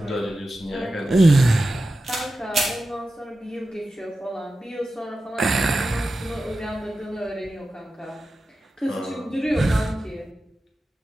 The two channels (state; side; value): normal; both; correlation 0.93